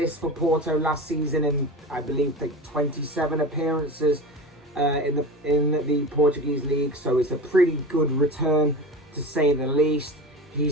for Porto last season in, I believe, 27 appearances in the Portuguese league. So it's a pretty good return, to say the least.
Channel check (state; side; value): normal; both; correlation 0.30